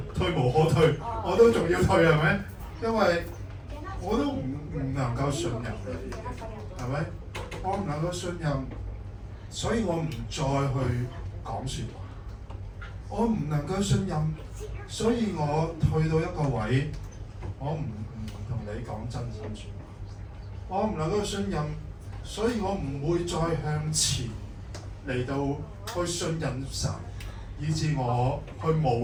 退無可退，我都仲要退係咪？因為我都唔能夠信任你，係咪？我唔能夠信任，所以我唔再去講説話。我唔能夠信任，所以我退到一個位，我唔同你講真心説話。我唔能夠信任，所以我唔會再向前嚟到去信任神，以致我去冒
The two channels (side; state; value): both; identical; correlation 1.00